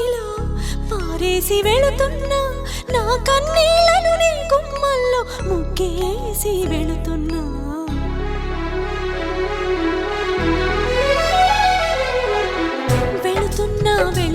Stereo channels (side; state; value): both; identical; correlation 1.00